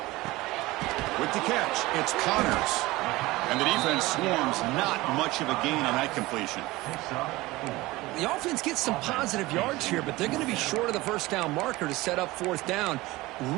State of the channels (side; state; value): left; quieter; 19.9 dB